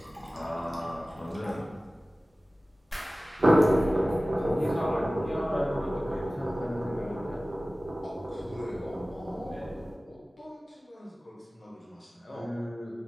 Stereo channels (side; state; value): both; normal; correlation 0.97